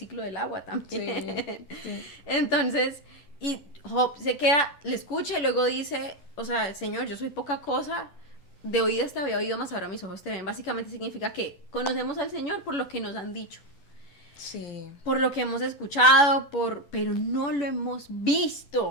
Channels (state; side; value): late; right; 11 ms